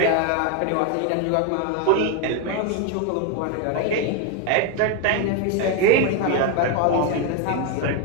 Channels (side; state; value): both; different; correlation 0.01